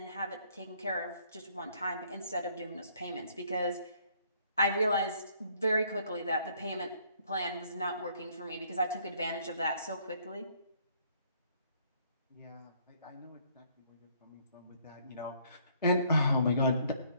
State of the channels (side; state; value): both; inverted; correlation -0.64